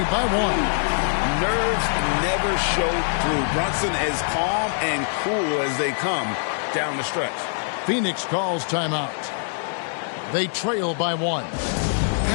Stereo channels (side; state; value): right; silent; digital silence